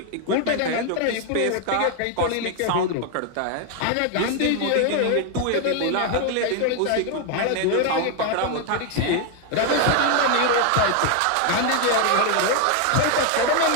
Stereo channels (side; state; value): both; different; correlation 0.00